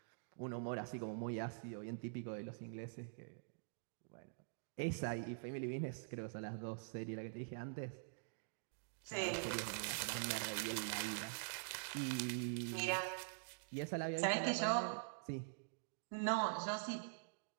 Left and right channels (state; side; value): silent; left; digital silence